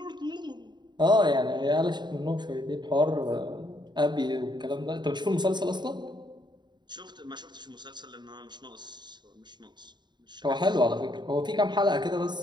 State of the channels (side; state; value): left; late; 0.21 ms